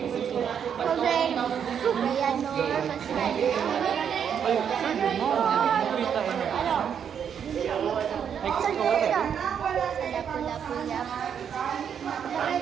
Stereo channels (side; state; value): left; quieter; 8.0 dB